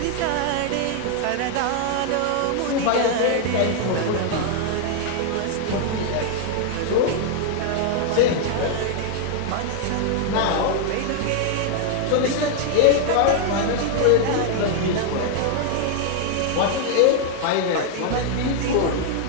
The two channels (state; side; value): different; both; correlation 0.00